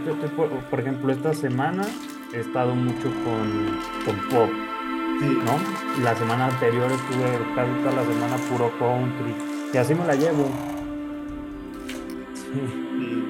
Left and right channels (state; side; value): identical; both; correlation 1.00